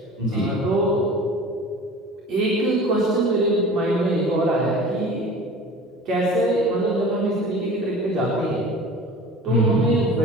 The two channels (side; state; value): both; normal; correlation 0.40